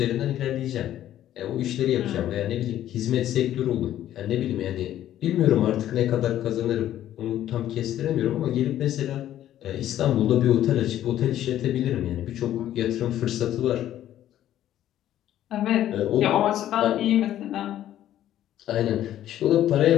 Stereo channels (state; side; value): quieter; right; 12.2 dB